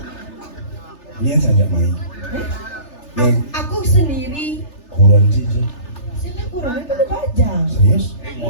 Ini saja main. Yang Aku sendiri. kurang sih. Saya kurang itu baju.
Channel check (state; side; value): late; right; 3.3 ms